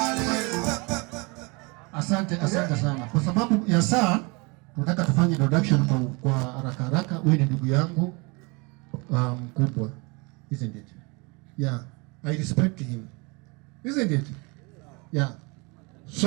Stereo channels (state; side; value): quieter; left; 28.8 dB